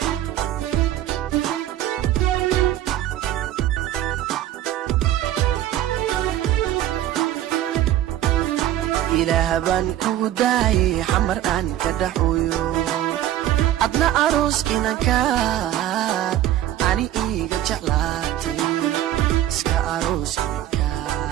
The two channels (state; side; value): quieter; left; 12.7 dB